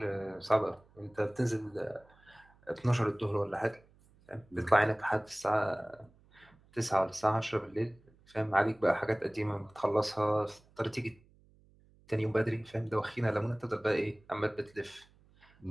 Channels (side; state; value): right; noise; hum, 29 dB below the sound